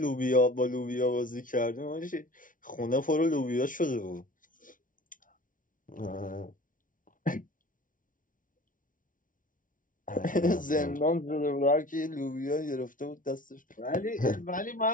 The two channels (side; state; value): right; late; 0.38 ms